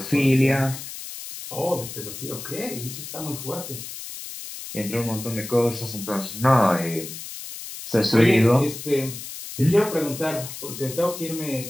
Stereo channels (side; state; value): left; noise; hiss, 10 dB below the sound